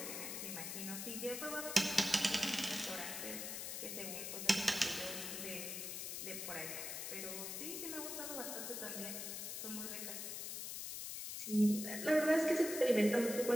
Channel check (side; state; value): left; noise; hiss, 5 dB below the sound